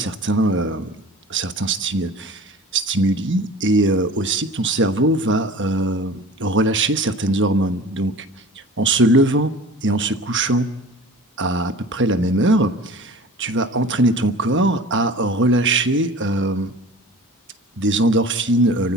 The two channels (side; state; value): both; normal; correlation 0.40